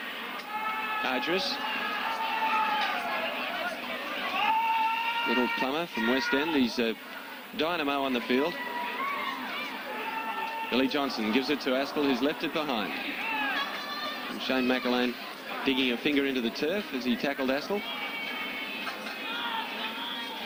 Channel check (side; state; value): both; identical; correlation 1.00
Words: Ardress. Little Plummer from West End. He's a dynamo on the field. Billy Johnson gives it to Astill, who's left it behind. And Shane McAlane digging a finger into the turf as he tackled Astill.